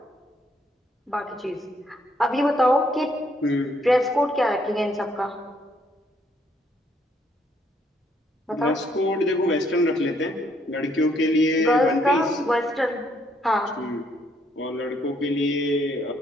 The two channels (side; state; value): both; normal; correlation 0.70